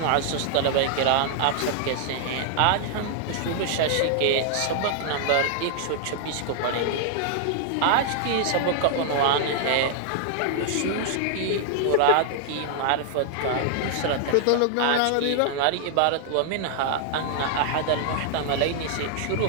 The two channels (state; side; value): different; both; correlation -0.01